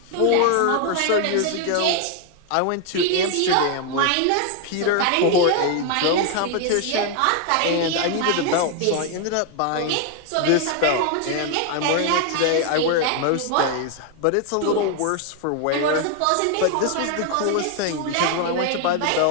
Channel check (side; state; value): both; different; correlation 0.01